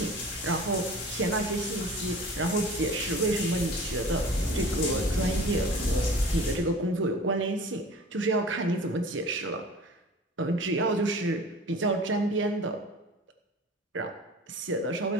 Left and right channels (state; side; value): normal; both; correlation 0.41